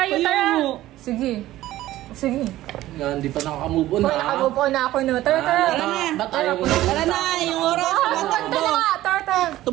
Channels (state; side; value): quieter; left; 15.2 dB